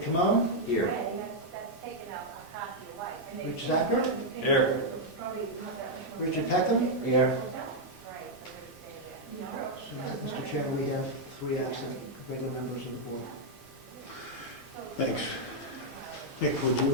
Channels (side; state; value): both; normal; correlation -0.02